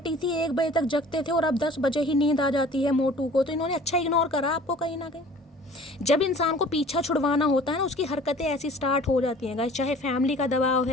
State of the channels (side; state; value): both; normal; correlation 0.48